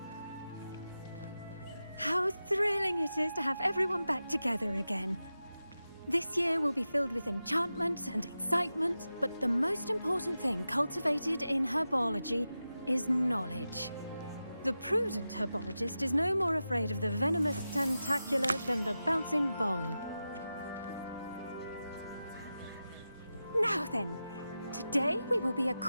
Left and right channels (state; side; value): inverted; both; correlation -0.93